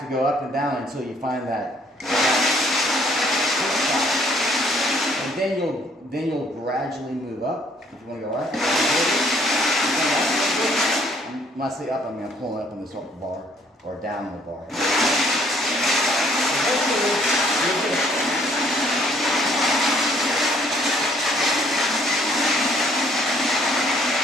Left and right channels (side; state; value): both; normal; correlation 0.63